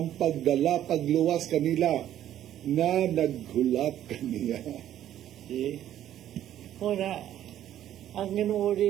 pagdala, pagluwas kanila nga naghulat kaniya. Ora, ang Ginoo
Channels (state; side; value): quieter; left; 11.7 dB